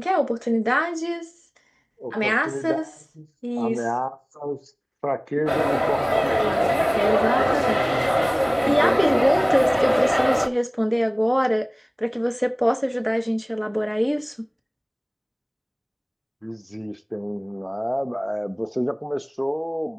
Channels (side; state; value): both; identical; correlation 1.00